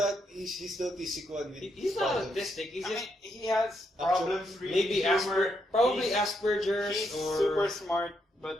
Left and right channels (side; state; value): both; normal; correlation 0.78